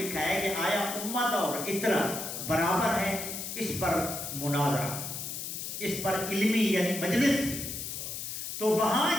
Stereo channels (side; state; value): left; noise; hiss, 6 dB below the sound